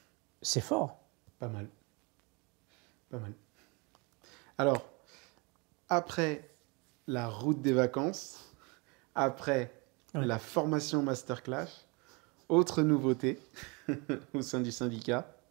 C'est fort. Pas mal. Pas mal. Alors, après la route des vacances, après la formation Masterclass, autre nouveauté au sein du syndicat,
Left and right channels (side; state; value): left; quieter; 29.5 dB